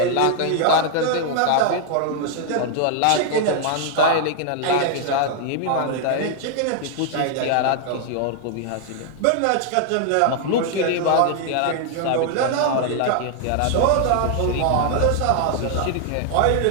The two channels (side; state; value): both; different; correlation 0.00